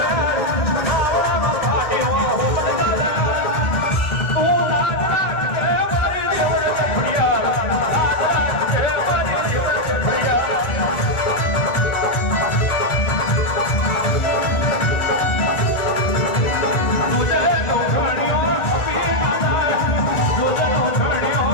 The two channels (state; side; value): late; right; 1.9 ms